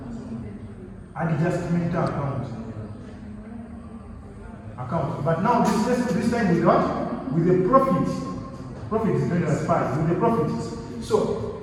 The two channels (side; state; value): both; identical; correlation 1.00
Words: adjustment account. But now this time with what? With the profit. Profit is going as 5 with the profit. So